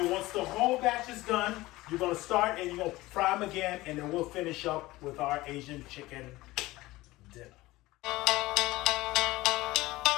once the whole batch is done, you're gonna start and you're gonna fry them again, and then we'll finish up with our Asian chicken dinner.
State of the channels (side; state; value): right; quieter; 18.8 dB